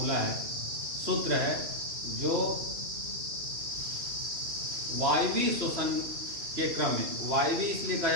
है, सूत्र है, जो वायवीय श्वसन के क्रम में, वायवीय इसलिए कहा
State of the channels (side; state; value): left; late; 3.1 ms